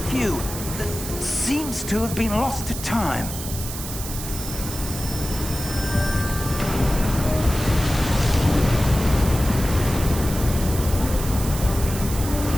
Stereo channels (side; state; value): right; noise; hiss, 9 dB below the sound